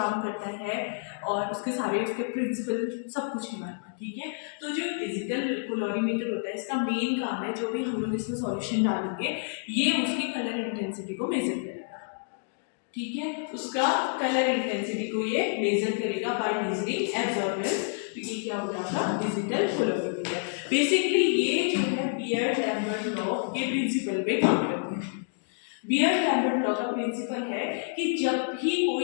करता है और उसके सारे उसके प्रिंसिपल सब कुछ है हमारे पास। ठीक है, तो जो डिजिटल कैलोरीमीटर होता है इसका मेन काम है, जो भी हम लोग इसमें सॉल्यूशन डालेंगे ये उसकी कलर इंटेंसिटी को मेजर करेगा। ठीक है, उसका कलर इंटेंसिटी को ये मेजर करेगा बाय मेजरिंग एब्जॉर्बेंस। तो ये क्या हो जाएगा, डिजिटल कैलोरीमीटर। बेसिकली ये जो है बियर्ड-लैम्बर्ट लॉ के प्रिंसिपल पे काम करते हैं। बियर्ड-लैम्बर्ट लॉ का प्रिंसिपल है कि जब भी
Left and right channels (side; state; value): right; silent; digital silence